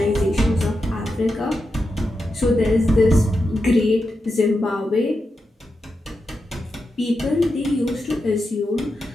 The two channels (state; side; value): normal; both; correlation 0.88